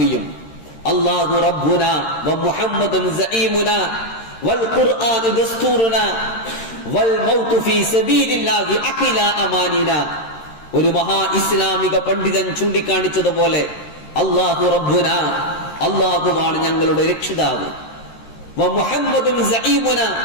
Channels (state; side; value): late; right; 13 ms